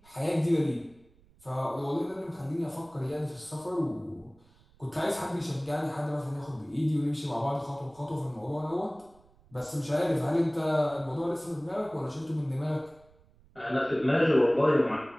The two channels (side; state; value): right; noise; rumble, 29 dB below the sound